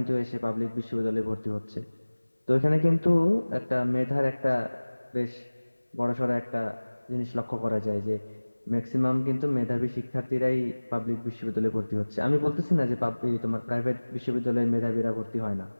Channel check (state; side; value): inverted; both; correlation -1.00